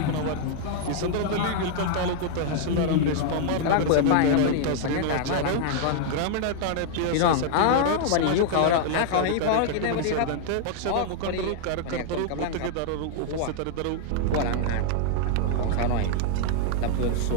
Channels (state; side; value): different; both; correlation 0.00